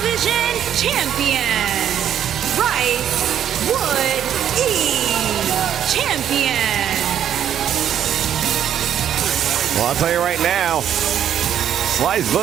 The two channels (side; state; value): left; quieter; 9.8 dB